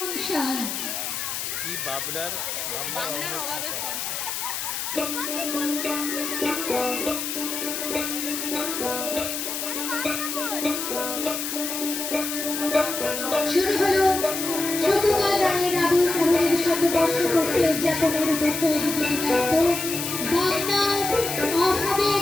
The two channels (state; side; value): noise; left; hiss, 4 dB below the sound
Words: সংসার কি বাবনার অভাবের সংসার। শুরু হলো সুকুমার রায়ের আবুল তাহেরের শতবর্ষ পূর্তি উদযাপনের উপর তৈরি গীতিনাট্য বাংলার